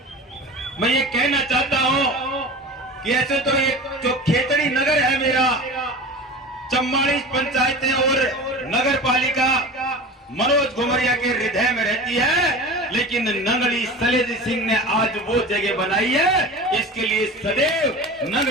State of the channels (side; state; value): both; normal; correlation 0.34